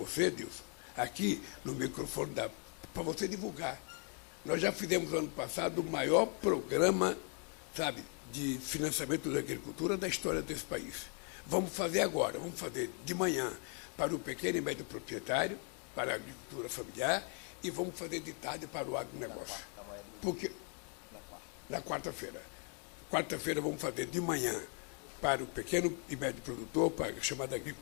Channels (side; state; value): right; quieter; 39.3 dB